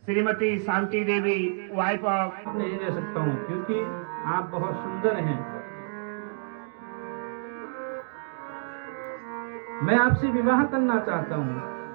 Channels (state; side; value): silent; left; digital silence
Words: Shrimati Shanti Devi, wife of. नहीं ले सकता हूँ क्योंकि आप बहुत सुंदर हैं। मैं आपसे विवाह करना चाहता हूँ।